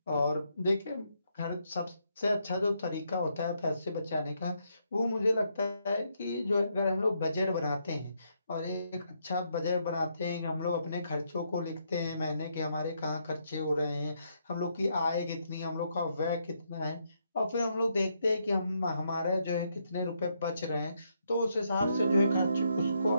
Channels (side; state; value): both; inverted; correlation -0.77